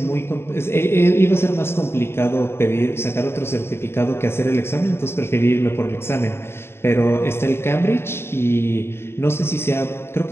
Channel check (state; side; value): late; right; 0.12 ms